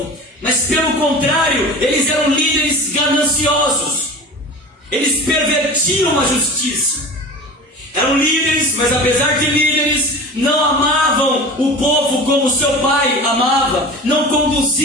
mas pelo contrário, eles eram líderes gananciosos. Eles pervertiam a justiça. Eram líderes, mas apesar de líderes, não amavam o povo como seu pai amava, não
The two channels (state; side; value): normal; both; correlation 0.35